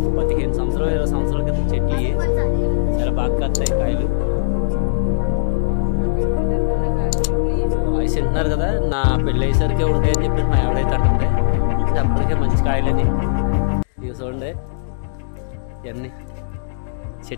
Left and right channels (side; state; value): right; silent; digital silence